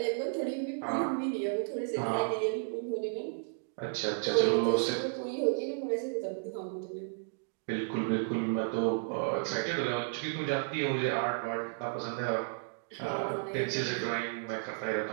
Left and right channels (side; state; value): left; silent; digital silence